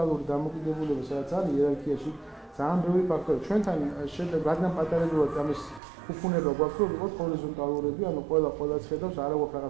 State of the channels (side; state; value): left; drops out; at 5.8 s